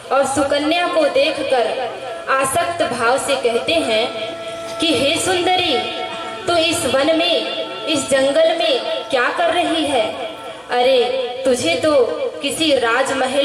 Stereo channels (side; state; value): both; identical; correlation 1.00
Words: और सुकन्या को देखकर आसक्त भाव से कहते हैं कि हे सुंदरी, तो इस वन में, इस जंगल में क्या कर रही है? अरे, तुझे तो किसी